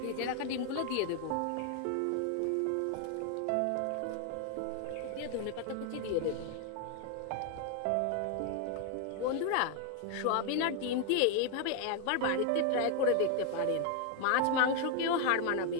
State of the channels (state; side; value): different; both; correlation 0.00